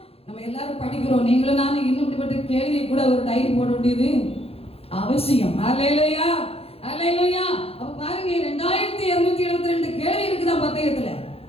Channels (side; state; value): right; late; 0.29 ms